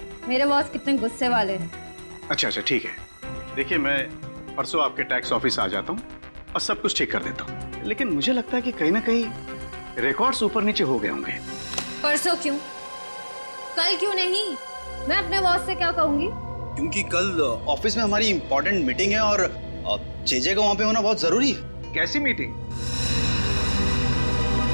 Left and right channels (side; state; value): both; inverted; correlation -1.00